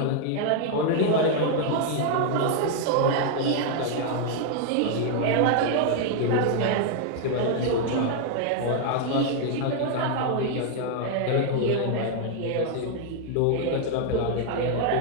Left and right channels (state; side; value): different; both; correlation 0.00